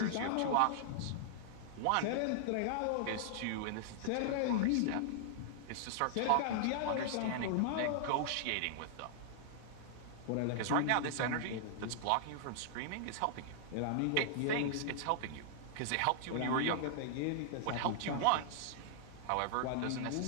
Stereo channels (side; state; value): both; different; correlation -0.01